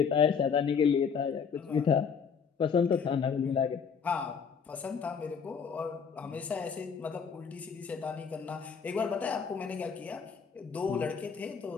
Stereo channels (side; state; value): right; quieter; 6.4 dB